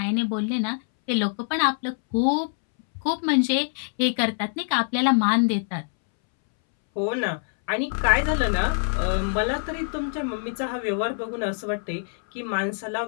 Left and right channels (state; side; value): silent; right; 62 dB below the other